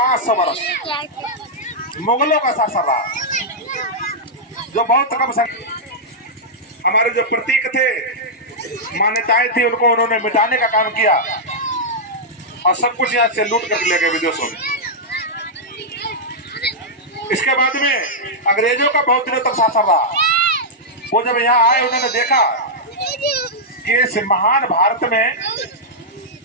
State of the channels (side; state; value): both; normal; correlation -0.08